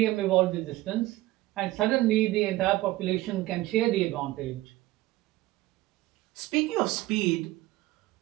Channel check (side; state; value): left; quieter; 17.5 dB